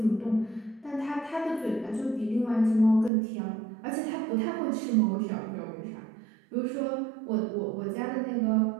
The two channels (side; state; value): left; drops out; at 3.1 s